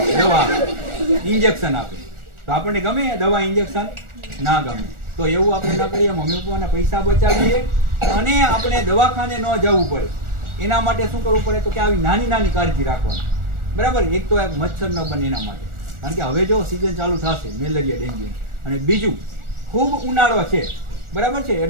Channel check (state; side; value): late; left; 1.4 ms